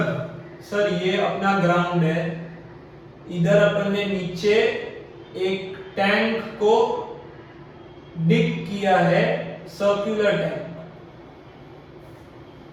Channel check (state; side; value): identical; both; correlation 1.00